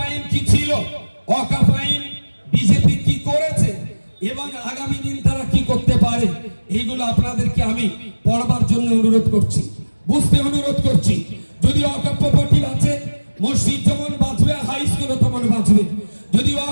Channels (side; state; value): both; inverted; correlation -1.00